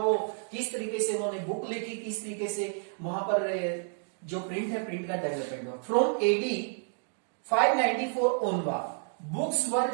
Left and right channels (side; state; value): left; silent; digital silence